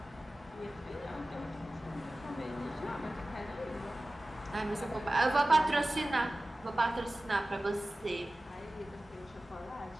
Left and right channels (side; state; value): both; normal; correlation 0.96